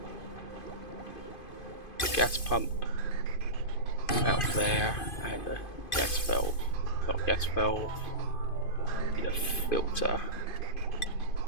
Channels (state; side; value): late; right; 2.5 ms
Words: gas pump out there and a gas valve, not gas valve, need a filter,